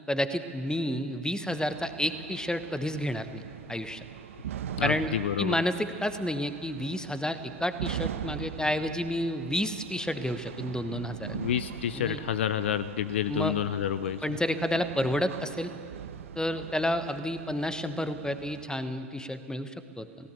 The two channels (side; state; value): both; normal; correlation 0.51